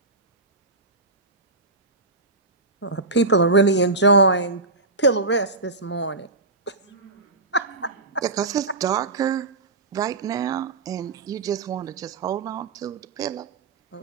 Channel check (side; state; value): left; quieter; 3.3 dB